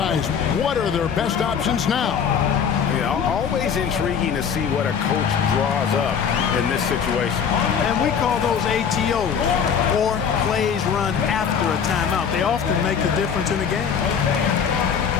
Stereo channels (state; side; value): quieter; right; 7.2 dB